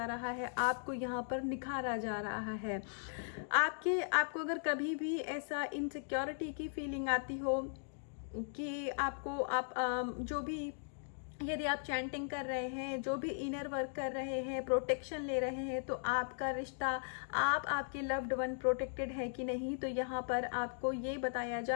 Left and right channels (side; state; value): right; silent; digital silence